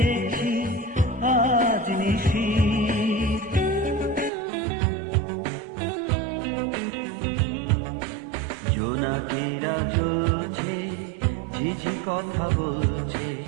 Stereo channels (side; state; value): left; drops out; at 4.3 s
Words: আজ নিশির। জোনাকিরা জ্বলছে, ঝিঝি কথা বলছে,